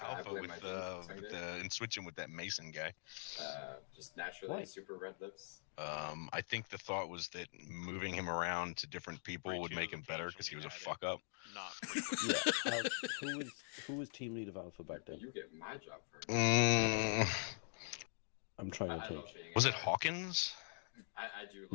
I Alpha blame with my team. and switch him with that Mason guy. Just naturally Why? super red lips. I think the thought was that moving him around to different people would make him better because he was a fuck up. Yeah. Who was team lead of Alpha back then? You get my job first. I'm trying to I love think. being Was a it guy. Hawkins? I do.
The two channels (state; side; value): silent; right; digital silence